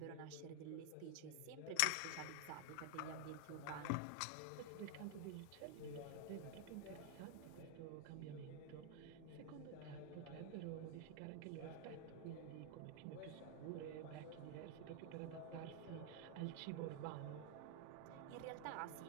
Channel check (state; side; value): different; both; correlation 0.00